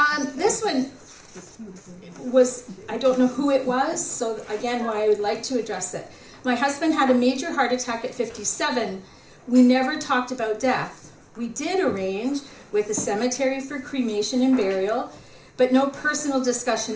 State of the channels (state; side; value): identical; both; correlation 1.00